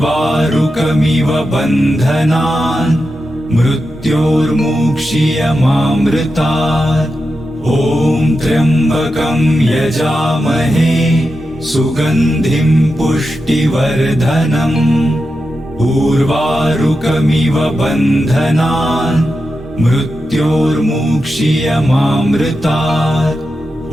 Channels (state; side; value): normal; both; correlation 0.89